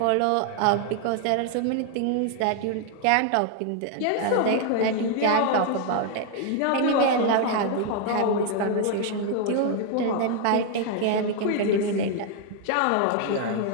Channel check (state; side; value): different; both; correlation 0.00